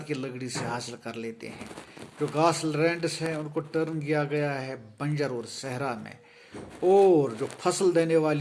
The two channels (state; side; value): identical; both; correlation 1.00